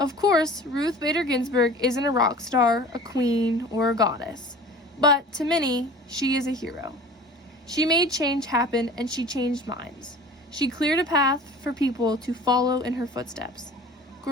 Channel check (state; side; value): normal; both; correlation 0.42